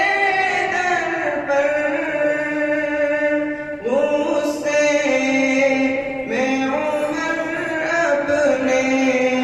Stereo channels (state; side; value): identical; both; correlation 1.00